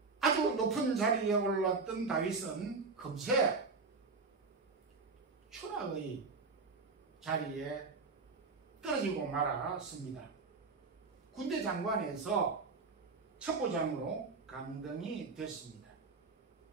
아주 높은 자리에 올랐던 다윗은 금세 추락의 자리에 떨어지고 말았습니다. 군대 장관에서 첩보장으로 강등이 됐습니다.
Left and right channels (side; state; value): left; quieter; 4.3 dB